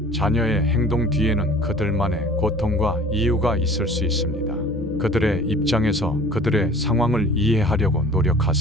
자녀의 행동 뒤에는 그들만의 고통과 이유가 있을 수 있습니다. 그들의 입장에서 그들의 상황을 이해하려고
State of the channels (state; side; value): normal; both; correlation 0.46